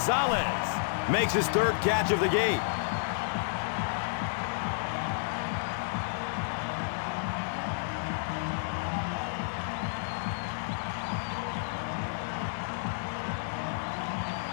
makes his third catch of the game.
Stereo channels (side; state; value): right; silent; digital silence